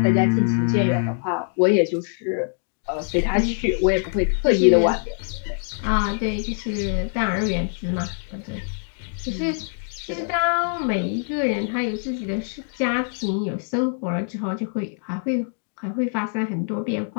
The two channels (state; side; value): silent; right; digital silence